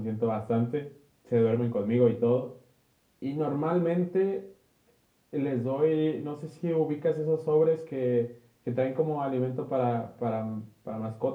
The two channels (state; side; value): identical; both; correlation 1.00